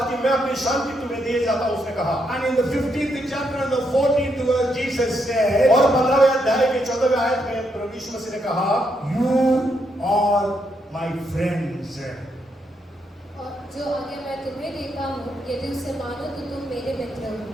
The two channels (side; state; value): both; normal; correlation 0.78